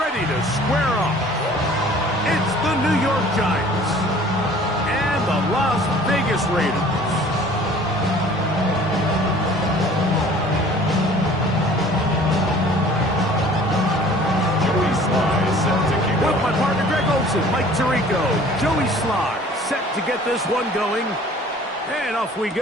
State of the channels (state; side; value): normal; both; correlation 0.50